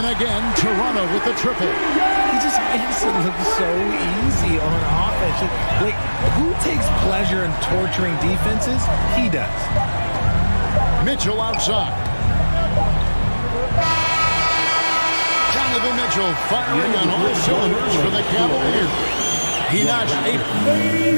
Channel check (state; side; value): inverted; both; correlation -1.00